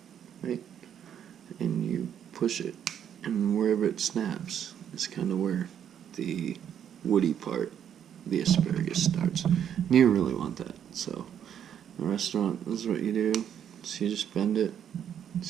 right, and you push it, and wherever it snaps is kind of where the woody part, the asparagus, starts. And you really want that. So in a restaurant, this is what you do. So you just bend it,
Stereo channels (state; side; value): quieter; left; 9.2 dB